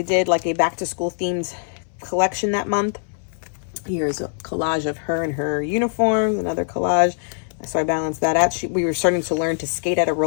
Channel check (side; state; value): right; silent; 63 dB below the other